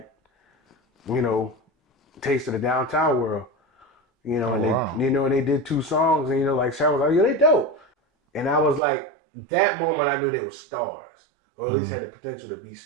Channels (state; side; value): drops out; left; at 8.8 s